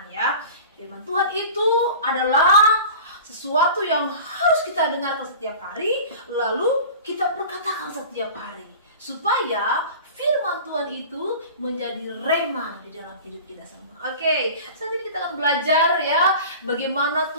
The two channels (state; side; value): inverted; both; correlation -0.38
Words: ya. Firman Tuhan itu adalah sesuatu yang harus kita dengarkan setiap hari, lalu kita perkatakan setiap hari, supaya firman Tuhan itu menjadi rema di dalam hidup kita semua. Oke, saat ini kita akan belajar ya, bagaimana